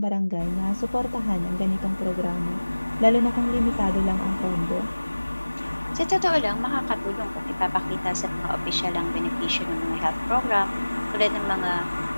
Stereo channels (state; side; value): inverted; both; correlation -1.00